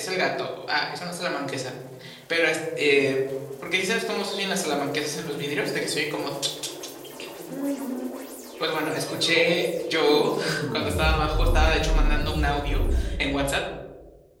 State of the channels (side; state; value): both; identical; correlation 1.00